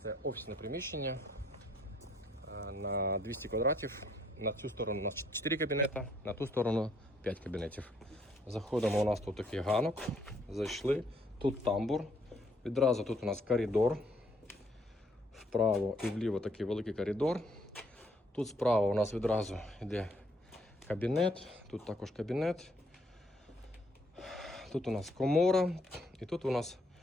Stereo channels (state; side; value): normal; both; correlation 0.68